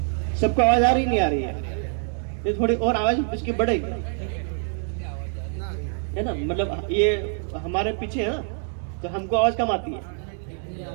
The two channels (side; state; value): left; silent; 56 dB below the other